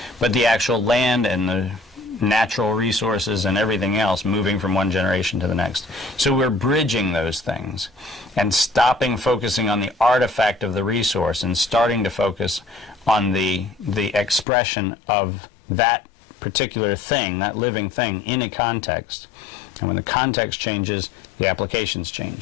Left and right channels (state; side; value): drops out; right; at 14.5 s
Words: but the actual land and the natural resources and everything else moving from one generation to the next. So we're bridging those things and stopping focusing on the artifact of the resource and starting to focus on the expression of that particular thing, that living thing, in a context. And when the context changes, the applications